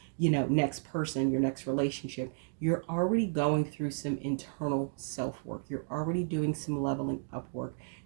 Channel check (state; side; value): silent; left; digital silence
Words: next person, your next relationship, you're already going through some internal self-work. You're already doing some leveling up work.